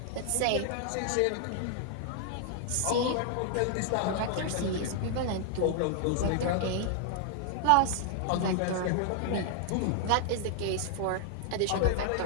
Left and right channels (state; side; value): different; both; correlation 0.00